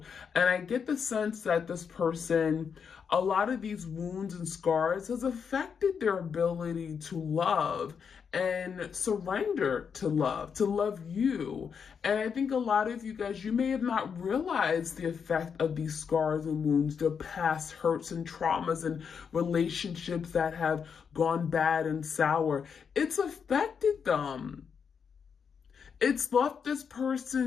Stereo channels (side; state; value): right; quieter; 6.6 dB